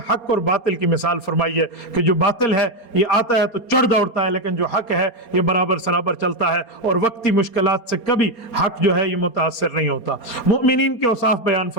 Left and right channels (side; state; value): right; late; 4.3 ms